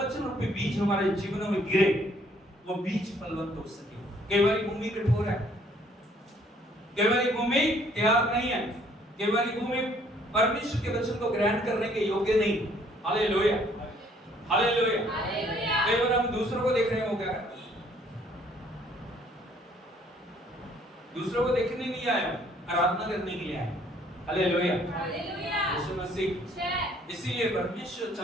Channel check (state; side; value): normal; both; correlation 0.62